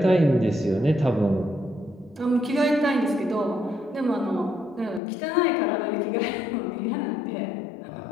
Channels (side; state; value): right; drops out; at 5.0 s